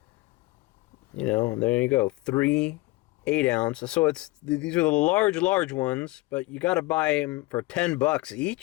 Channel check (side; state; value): right; quieter; 21.2 dB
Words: There you go. 3 8 ounce. So these are the large ones, but you got to buy them for $10